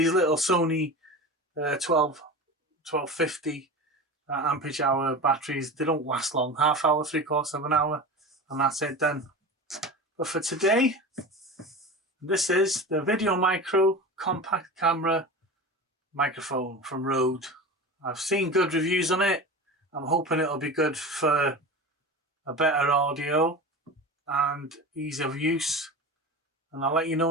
Sony 1250 ampage hour batteries. They don't last long, half hour, 3/4 of an hour, and that's it done. But for today, this is the VideoMicro compact camera microphone from Rode. I've seen good reviews on it. I'm hoping it'll be good for a better audio and ease of use, and I'll let you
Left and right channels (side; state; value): both; normal; correlation 0.30